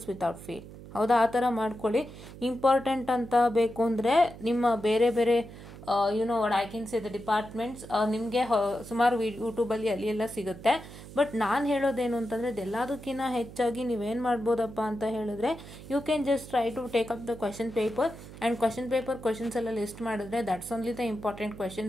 without fail. ಹೌದಾ, ಆ ಥರ ಮಾಡ್ಕೊಳ್ಳಿ. ಇಂಪಾರ್ಟೆಂಟ್ ಅಂತ ಬೇಕು ಅಂದರೆ ನಿಮ್ಮ ಬೇರೆ ಬೇರೆ what I can say the departments ನಿಮಗೆ ಸುಮಾರು ಯೂಟ್ಯೂಬಲ್ಲಿ ಅಲ್ಲಿ ಎಲ್ಲ ಸಿಗುತ್ತೆ. ಬಟ್ ನಾನು ಹೇಳೋದೇನು ಅಂತಂದರೆ, ಇದೆಲ್ಲದಕ್ಕಿಂತ ಹೆಚ್ಚಾಗಿ ನೀವೇನು ಮಾಡ್ಬೋದಪ್ಪ ಅಂತ ಹೇಳಿದ್ರೆ, you can just try to take up the question paper and question paper questions ಎಲ್ಲ ಲಿಸ್ಟ್ ಮಾಡಿದ್ರೆ that's only the important question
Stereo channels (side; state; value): right; noise; hum, 15 dB below the sound